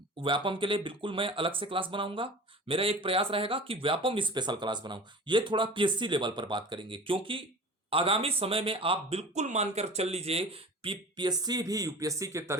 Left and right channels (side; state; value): both; normal; correlation 0.38